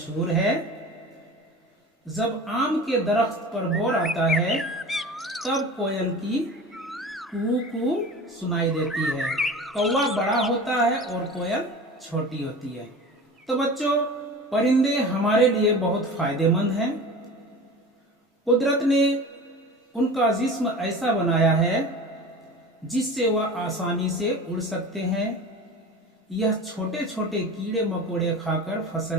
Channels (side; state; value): both; normal; correlation 0.36